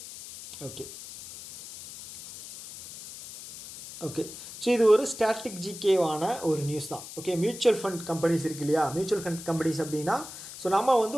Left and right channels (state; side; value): noise; left; hiss, 13 dB below the sound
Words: okay okay so இது ஒரு ஸ்டாட்டிக் ஜிகேவான ஒரு நியூஸ் தான். ஓகே, மியூச்சுவல் ஃபண்ட் கம்பெனிஸ் இருக்கு இல்லையா, மியூச்சுவல் ஃபண்ட் கம்பெனிஸ் அப்படின்னா, ஸோ நம்ம வந்து